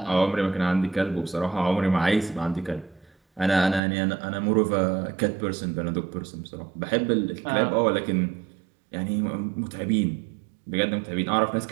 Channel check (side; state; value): left; drops out; at 3.8 s